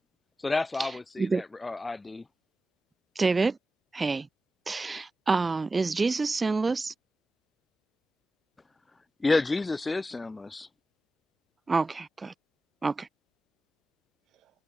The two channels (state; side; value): normal; both; correlation 0.94